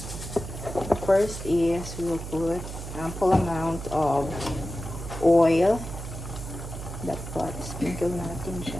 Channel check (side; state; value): right; noise; hum, 9 dB below the sound